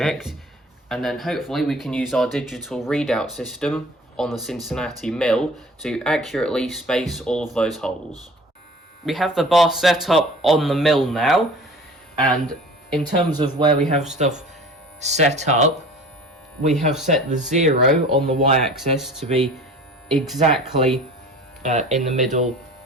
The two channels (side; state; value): both; normal; correlation 0.43